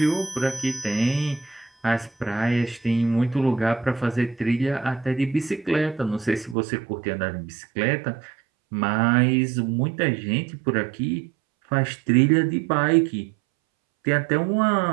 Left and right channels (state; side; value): drops out; left; at 6.6 s